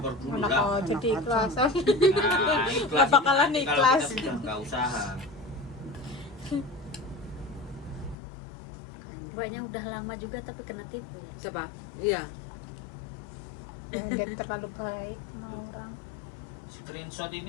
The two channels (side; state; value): right; drops out; at 8.2 s